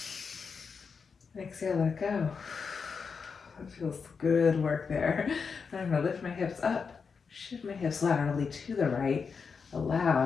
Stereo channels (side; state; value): right; quieter; 5.5 dB